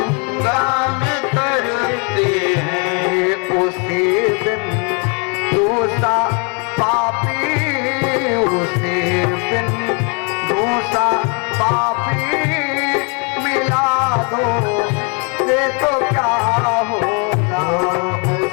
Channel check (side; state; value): right; quieter; 35.7 dB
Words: में तरते हैं। उसी दिन दूसरा पापी, उसी दिन दूसरा पापी मिला दो ये तो क्या होगा।